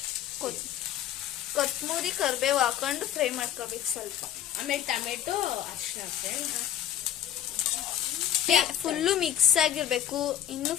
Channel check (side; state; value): right; quieter; 10.6 dB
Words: ಕೊತ್ತಂಬರಿ, ಕರಿಬೇವು ಹಾಕೊಂಡು ಫ್ರೈ ಮಾಡ್ಕೋಬೇಕು ಸ್ವಲ್ಪ. ಆಮೇಲೆ ಟೊಮೆಟೊ, ಅರ್ಶಿನ ಫ್ರೆಂಡ್ಸ್ ಫುಲ್ಲು ಮಿಕ್ಸ್ ಆಗಿರ್ಬೇಕು, ಇನ್ನು